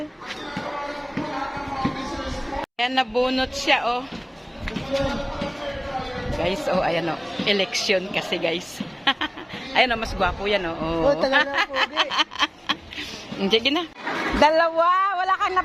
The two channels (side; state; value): both; identical; correlation 1.00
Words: Ayan, nabunot siya, oh. Guys, oh, ayan, oh. Election kasi, guys. Ayan, oh, mas gwapo yan, oh. Oh, talaga po, di. Sige na. Dalawa, wala kang